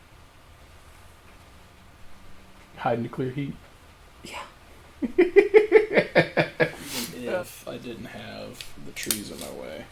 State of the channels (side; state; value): both; identical; correlation 1.00